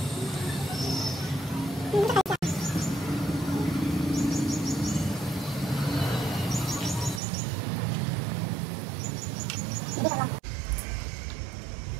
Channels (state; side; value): drops out; left; at 7.2 s